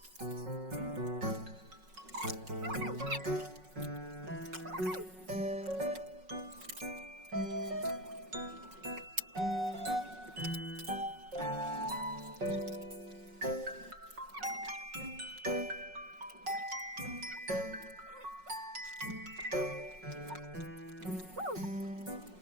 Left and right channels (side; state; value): left; late; 5.4 ms